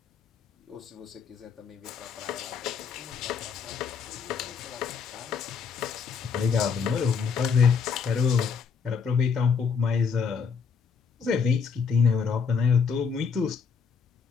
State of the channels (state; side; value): quieter; right; 6.1 dB